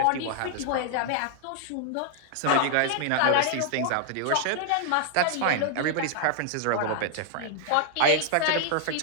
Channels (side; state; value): both; different; correlation 0.00